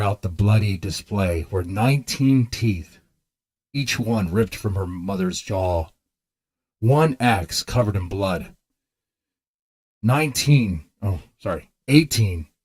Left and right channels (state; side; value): identical; both; correlation 1.00